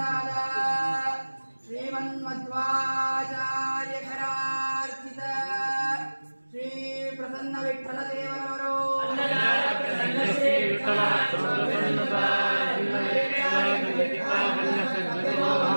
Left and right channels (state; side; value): inverted; both; correlation -1.00